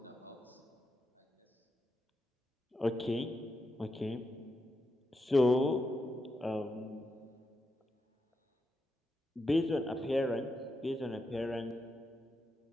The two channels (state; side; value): normal; both; correlation 0.85